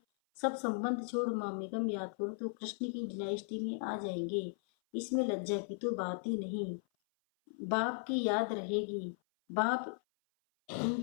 सब संबंध छोड़ मामेकम याद करो तो कृष्ण की डायनेस्टी में आ जाएंगे। इसमें लज्जा की तो बात ही नहीं। बाप की याद रहेगी। बाप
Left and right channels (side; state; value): right; silent; 53 dB below the other